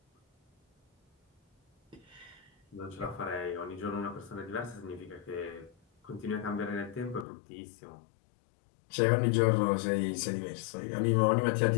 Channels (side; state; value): right; drops out; at 7.2 s